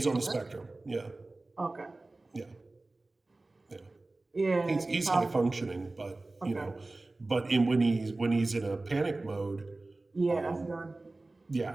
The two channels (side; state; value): left; quieter; 3.1 dB